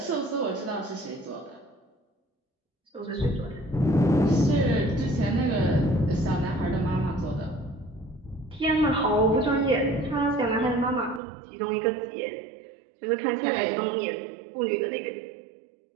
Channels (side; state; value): left; drops out; at 11.2 s